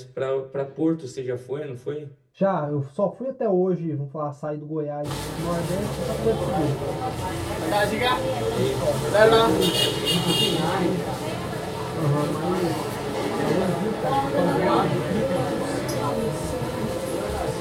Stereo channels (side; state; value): both; identical; correlation 1.00